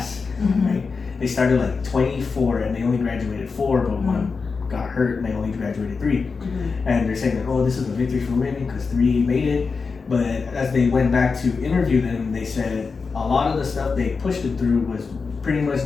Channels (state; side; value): quieter; right; 4.8 dB